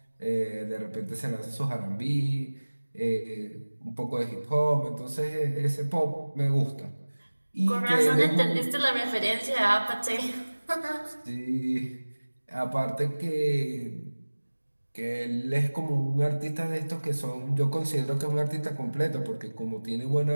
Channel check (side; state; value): both; inverted; correlation -1.00